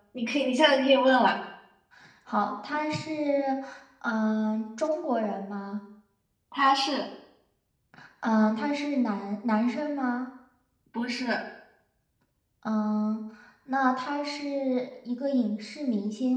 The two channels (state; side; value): identical; both; correlation 1.00